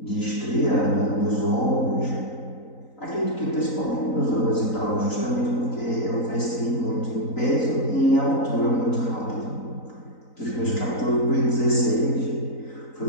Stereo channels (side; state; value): right; late; 3.9 ms